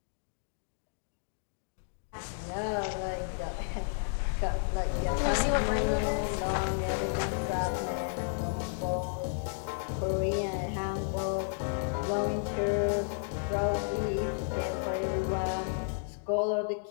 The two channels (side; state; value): right; silent; digital silence